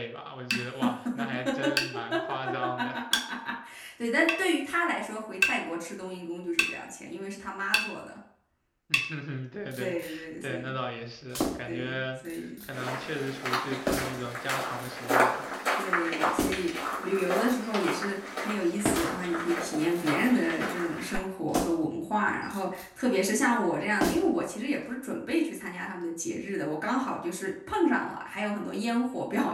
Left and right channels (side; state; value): both; identical; correlation 1.00